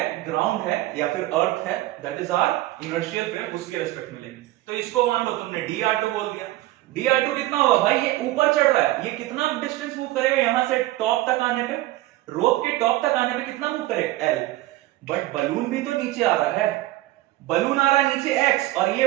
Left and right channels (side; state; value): left; quieter; 16.9 dB